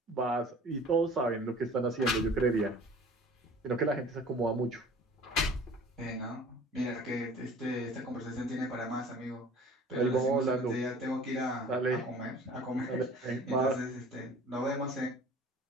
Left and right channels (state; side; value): normal; both; correlation 0.46